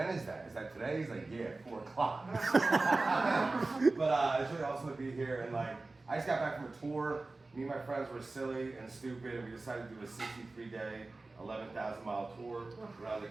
is that? Is that today? He's like, yeah, 4 o'clock. But it's really awesome to be here. And like, I just got back from a tour. Me and my friends were silly and stupid, and we decided to do a 63-day, 11,000-mile tour around the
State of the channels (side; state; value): left; quieter; 3.3 dB